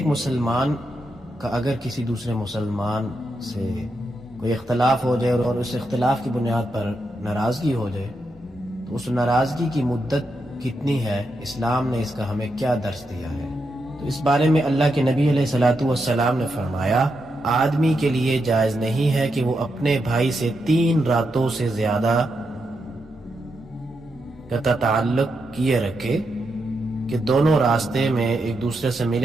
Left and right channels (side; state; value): both; normal; correlation 0.84